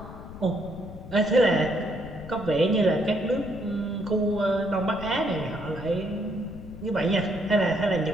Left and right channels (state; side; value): noise; left; rumble, 14 dB below the sound